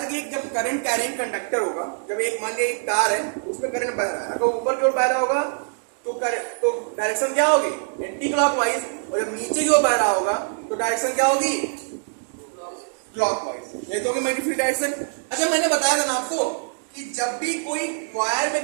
कि जब करंट कैरिंग कंडक्टर होगा, जब एक मान लिया एक तार है उसमें करंट बह रहा है, अगर ऊपर की ओर बह रहा होगा तो डायरेक्शन क्या होगी, एंटी क्लॉकवाइज, और जब नीचे की ओर बह रहा होगा तो डायरेक्शन क्या होगी, क्लॉकवाइज। ये तो होगी मैग्नेटिक फील्ड डायरेक्शन। अच्छा, मैंने बताया था ना आपको कि जब भी कोई वायर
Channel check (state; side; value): silent; left; digital silence